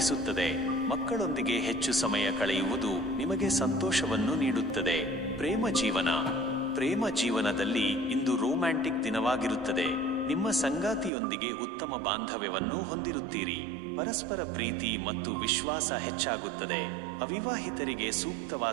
ಮಕ್ಕಳೊಂದಿಗೆ ಹೆಚ್ಚು ಸಮಯ ಕಳೆಯುವುದು ನಿಮಗೆ ಸಂತೋಷವನ್ನು ನೀಡುತ್ತದೆ. ಪ್ರೇಮ ಜೀವನದಲ್ಲಿ ಇಂದು ರೋಮ್ಯಾಂಟಿಕ್ ದಿನವಾಗಿರುತ್ತದೆ. ನಿಮ್ಮ ಸಂಗಾತಿಯೊಂದಿಗೆ ಉತ್ತಮ ಬಾಂಧವ್ಯವನ್ನು ಹೊಂದಿರುತ್ತೀರಿ. ಪರಸ್ಪರ ಪ್ರೀತಿ ಮತ್ತು ವಿಶ್ವಾಸ ಹೆಚ್ಚಾಗುತ್ತದೆ. ಅವಿವಾಹಿತರಿಗೆ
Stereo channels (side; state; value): left; drops out; at 11.1 s